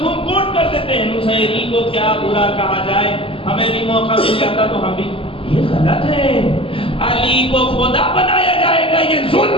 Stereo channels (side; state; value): right; late; 0.26 ms